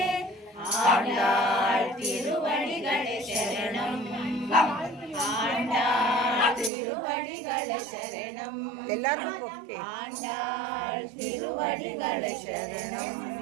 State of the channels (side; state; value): left; drops out; at 6.7 s